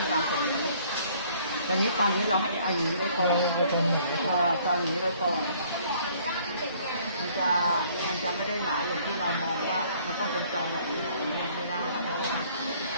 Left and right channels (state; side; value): inverted; both; correlation -0.59